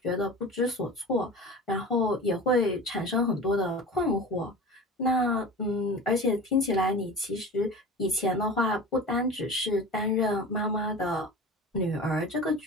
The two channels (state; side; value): normal; both; correlation 0.35